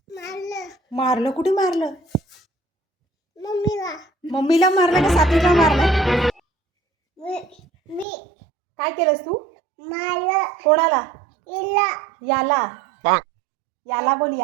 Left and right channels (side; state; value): left; drops out; at 8.1 s